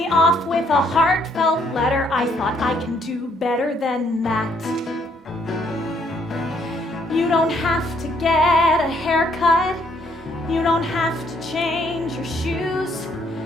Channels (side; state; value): both; normal; correlation 0.68